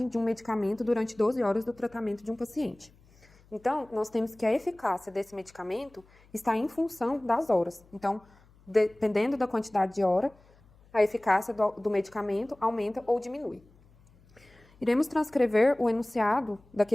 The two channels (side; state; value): left; noise; hum, 28 dB below the sound